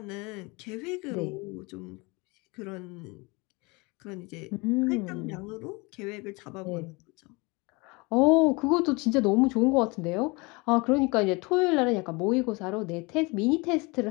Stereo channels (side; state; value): right; quieter; 26.7 dB